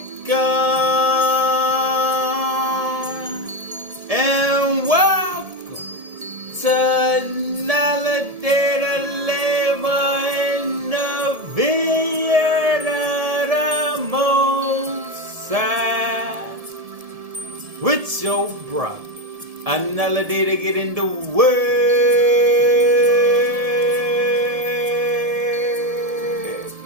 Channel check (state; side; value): late; left; 1.7 ms